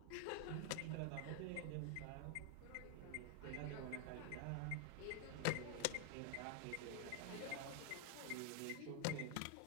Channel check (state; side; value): different; both; correlation 0.00